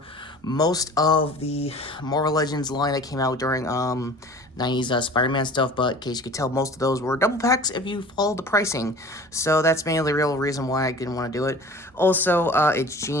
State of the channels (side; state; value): both; normal; correlation 0.43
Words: most of the Marvel Legends line that came out during 90s Spider-Man stuff, but in case you could tell, most of those were double packs if you follow the pricing. So that's mainly the real reason why I didn't want to do it. Also, it's